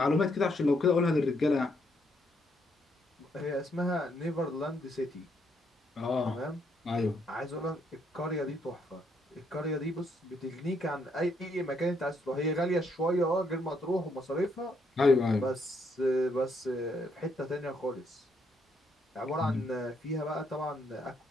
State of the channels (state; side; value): normal; both; correlation 0.74